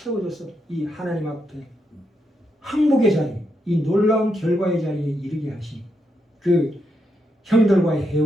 이 하나님 앞에 항복의 자리, 이 놀라운 결과의 자리에 이르게 하신 그 형들과의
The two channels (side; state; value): both; normal; correlation 0.82